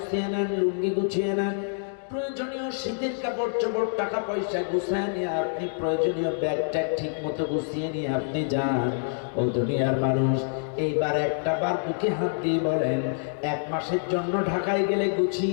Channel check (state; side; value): silent; right; digital silence